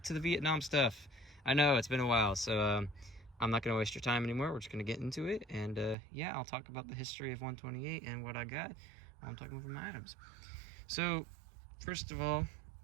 to the Vietnam stuff. I know it's been a while, so I'm not gonna waste your time anymore. We're just gonna get into it, and yeah, I'll talk about the history of 128 and what I got while I'm talking about my items. So, first of all,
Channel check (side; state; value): left; drops out; at 6.0 s